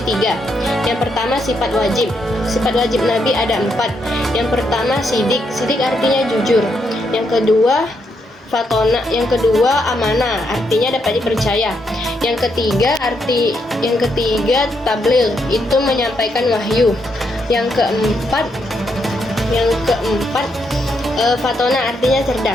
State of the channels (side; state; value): both; normal; correlation 0.78